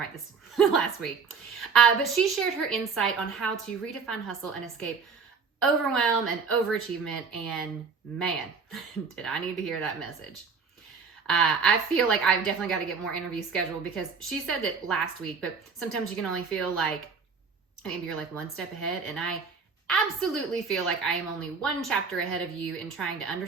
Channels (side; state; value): left; quieter; 5.4 dB